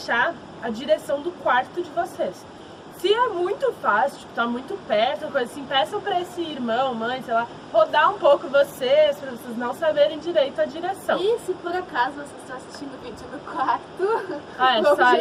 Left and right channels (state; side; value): identical; both; correlation 1.00